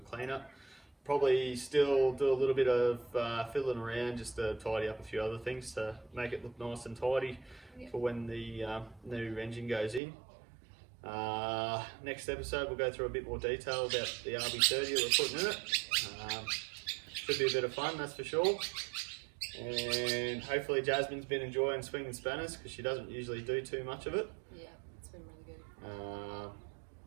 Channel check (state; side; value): drops out; left; at 10.0 s